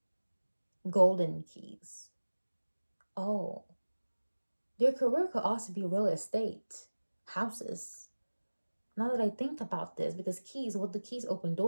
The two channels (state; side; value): inverted; both; correlation -1.00